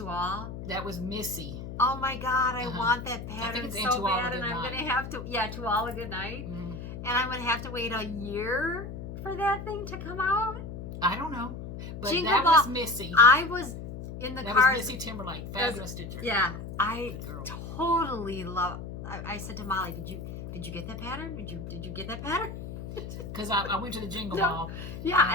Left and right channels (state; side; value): noise; left; hum, 9 dB below the sound